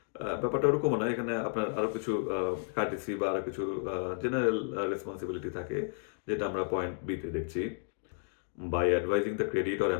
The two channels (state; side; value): silent; right; digital silence